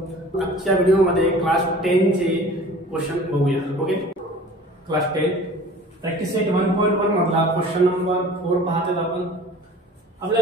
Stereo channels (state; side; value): normal; both; correlation 0.45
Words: आजच्या व्हिडिओमध्ये क्लास 10 चे क्वेश्चन बघूया. ओके, क्लास 10 प्रॅक्टिस सेट 1.1 मधला क्वेश्चन नंबर 4 पाहतात आपण.